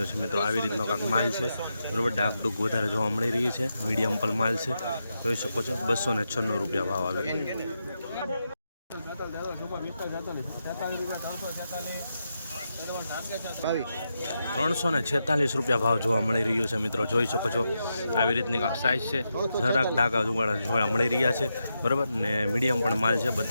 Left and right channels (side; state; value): both; inverted; correlation -0.86